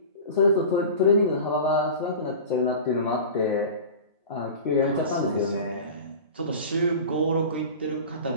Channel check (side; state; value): both; inverted; correlation -0.34